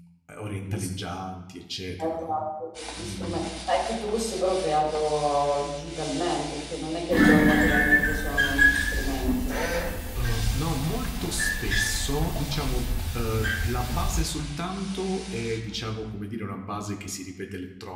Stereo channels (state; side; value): identical; both; correlation 1.00